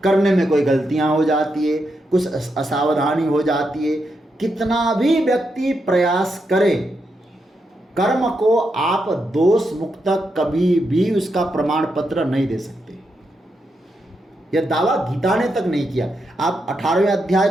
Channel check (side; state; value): both; normal; correlation 0.83